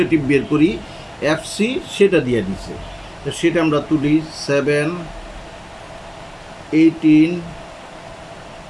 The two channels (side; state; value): both; identical; correlation 1.00